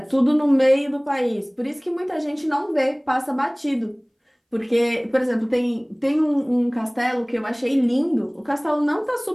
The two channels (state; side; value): identical; both; correlation 1.00